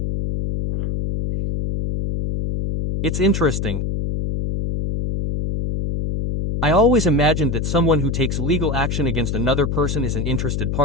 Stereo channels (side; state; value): left; noise; hum, 1 dB below the sound